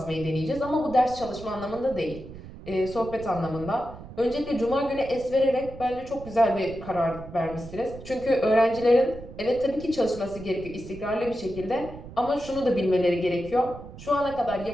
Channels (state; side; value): noise; right; rumble, 14 dB below the sound